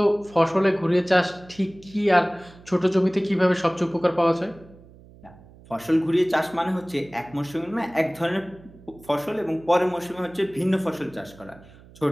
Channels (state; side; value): noise; right; hum, 23 dB below the sound